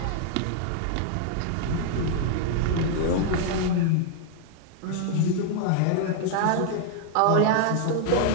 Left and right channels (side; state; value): both; different; correlation 0.00